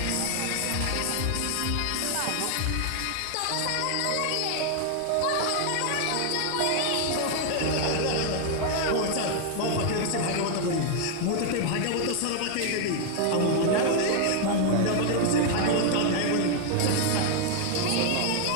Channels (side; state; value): both; different; correlation 0.00